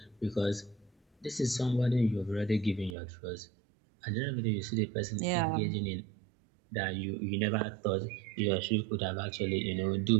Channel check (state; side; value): drops out; left; at 3.0 s